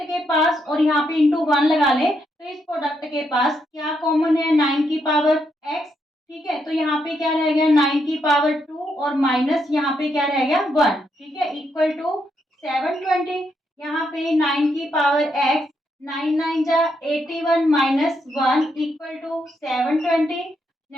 के पास और यहाँ पे इंटू 1 लगा ले, तो इस प्रोडक्ट के पास क्या कॉमन है, 9 की पावर x, ठीक है। तो यहाँ पे क्या रह गया, 9 की पावर 2 और माइनस यहाँ पे क्या रह गया 1, ठीक है, इक्वल टू 720। यहाँ पे 9 की पावर x, 9 9 जा 81 माइनस 1 इक्वल टू 720।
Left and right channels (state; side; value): normal; both; correlation 0.79